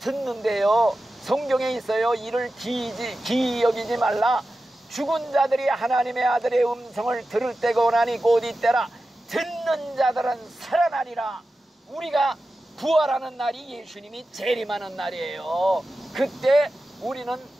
성경에 있어요. 이를 기이 여기지 말라. 죽은 자들이 하나님의 아들의 음성을 들을 때가 오나니 곧 이때라. 듣는 자들은 살아나리라. 우리가 부활하는 날이 예수님이 재림하는 날이에요. 그때 우리는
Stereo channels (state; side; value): normal; both; correlation 0.93